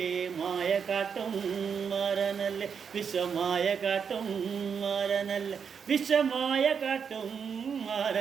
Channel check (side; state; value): left; quieter; 6.7 dB